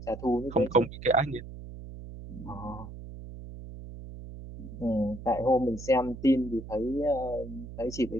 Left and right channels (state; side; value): noise; right; hum, 12 dB below the sound